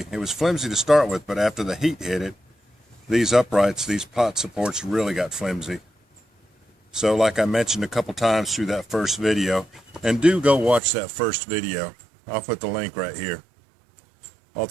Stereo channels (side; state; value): left; drops out; at 10.8 s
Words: It was flimsy to start with, but after the heat hit it, these uprights, these pot supports really got flimsy. So like I mentioned a couple times through that first video, and do go watch that first video. I'll put the link right here. All